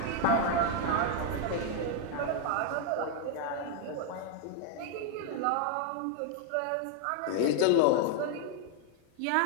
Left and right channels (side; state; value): both; different; correlation 0.00